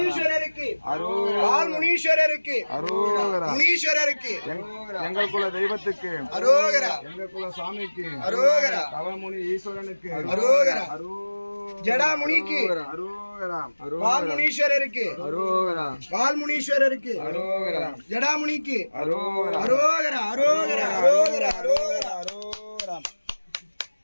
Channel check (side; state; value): both; inverted; correlation -1.00